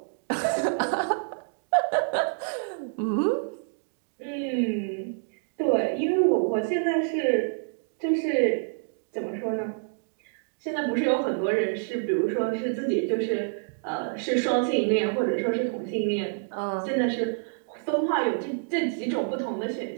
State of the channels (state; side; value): silent; left; digital silence